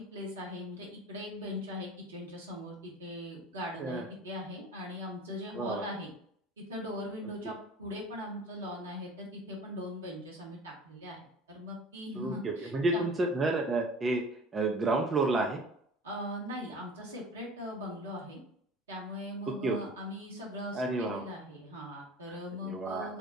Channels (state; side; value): normal; both; correlation 0.43